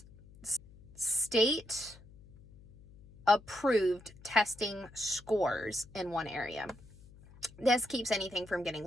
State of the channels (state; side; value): noise; left; hum, 22 dB below the sound